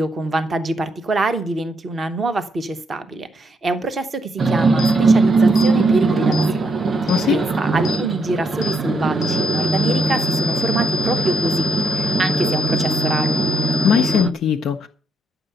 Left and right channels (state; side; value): normal; both; correlation 0.76